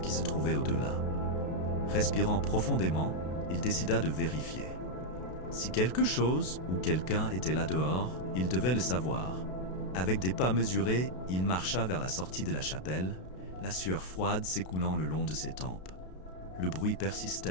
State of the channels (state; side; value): late; right; 32 ms